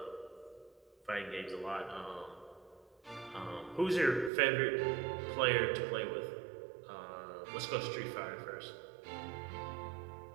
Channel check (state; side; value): drops out; left; at 4.3 s